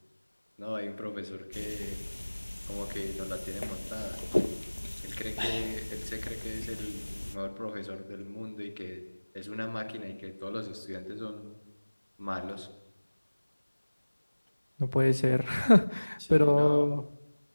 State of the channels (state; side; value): inverted; both; correlation -1.00